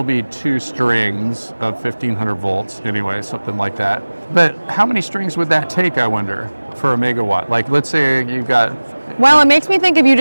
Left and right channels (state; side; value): inverted; both; correlation -1.00